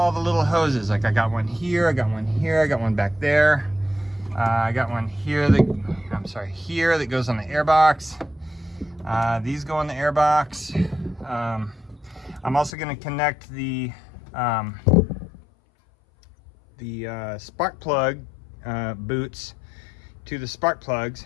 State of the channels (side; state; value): right; drops out; at 12.8 s